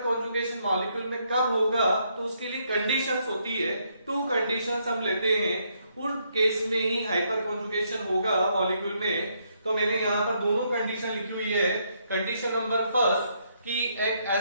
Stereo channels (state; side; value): inverted; both; correlation -0.74